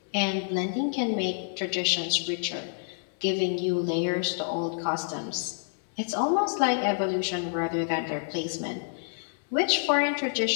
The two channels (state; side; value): silent; right; 59 dB below the other